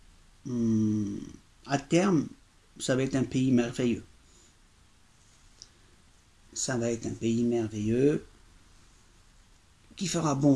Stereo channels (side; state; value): both; identical; correlation 1.00